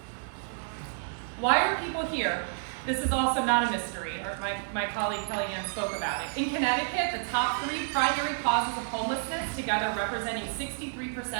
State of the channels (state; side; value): silent; left; digital silence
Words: Why are people here? This is also not a mystery, or my colleague Kellyanne spoke about it. In Connecticut, the top 3 primary causes of homelessness, together representing